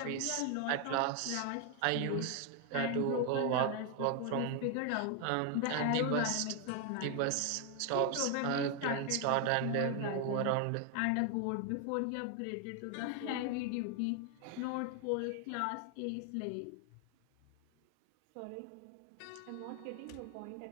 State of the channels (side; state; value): both; different; correlation 0.01